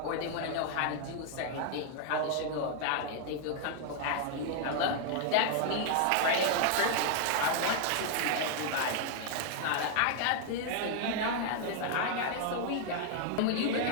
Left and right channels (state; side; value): different; both; correlation 0.00